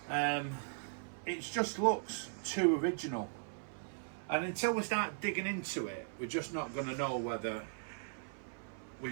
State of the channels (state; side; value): silent; left; 52 dB below the other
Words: It just looks too original. And until we start digging into it, we're just not going to know whether